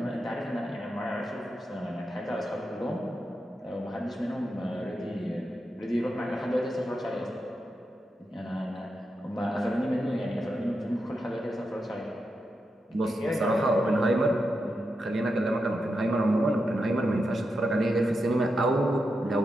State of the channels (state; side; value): normal; both; correlation 0.87